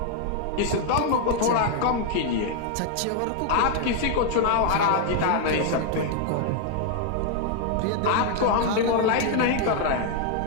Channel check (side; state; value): both; different; correlation 0.00